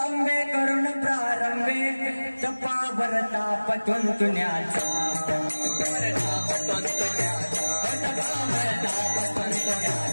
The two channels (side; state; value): both; inverted; correlation -1.00